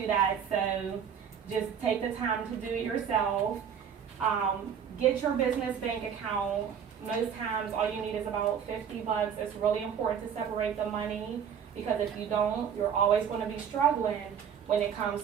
that, so just take the time to do it yourself. Get your business bank account. Most times all you need is about $50. It's really important to separate the money, because if you don't, you're always going to be struggling when it comes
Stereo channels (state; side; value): quieter; left; 7.9 dB